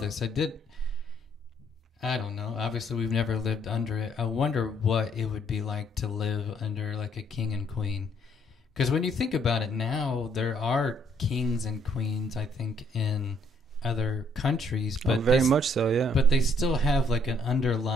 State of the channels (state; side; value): normal; both; correlation 0.67